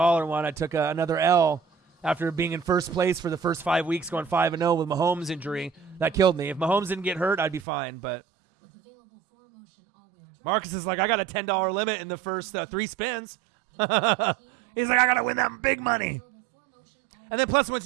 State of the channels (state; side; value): drops out; left; at 7.7 s